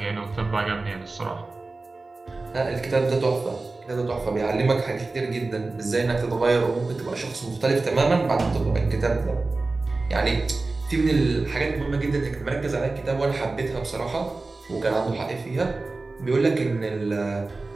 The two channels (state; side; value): quieter; left; 3.5 dB